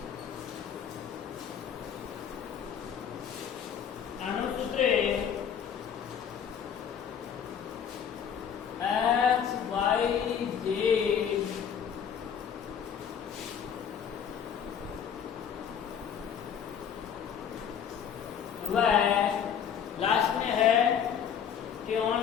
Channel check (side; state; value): right; quieter; 8.0 dB